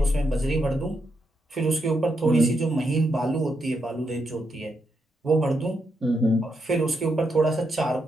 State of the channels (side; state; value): both; normal; correlation 0.81